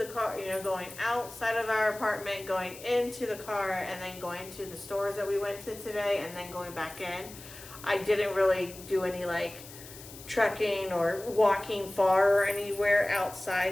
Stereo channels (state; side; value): noise; left; hiss, 16 dB below the sound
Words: car, you know, going outside of our apartment, going into the car, and then going to the stores that we went to today, and then going back in. I didn't really do any like trekking or walking far or anywhere